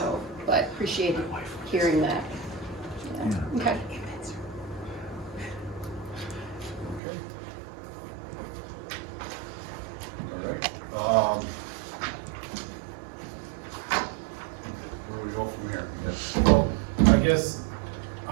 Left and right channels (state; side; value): drops out; left; at 7.0 s